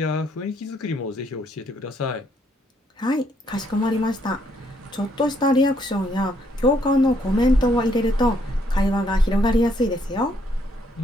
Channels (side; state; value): both; normal; correlation 0.71